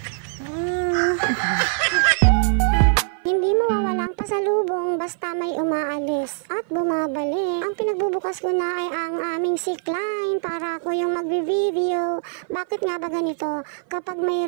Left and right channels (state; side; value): silent; left; 56 dB below the other